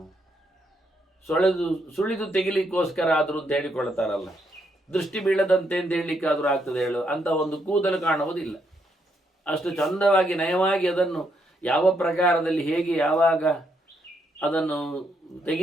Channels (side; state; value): both; normal; correlation 0.76